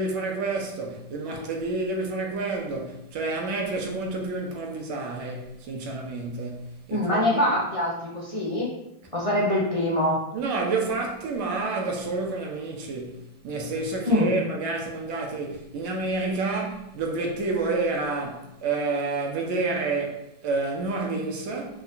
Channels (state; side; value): late; left; 1.6 ms